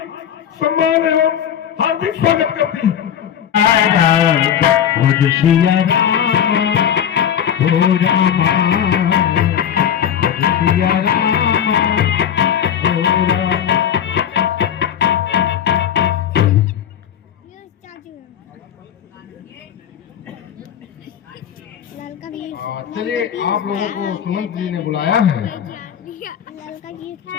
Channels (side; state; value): right; quieter; 9.1 dB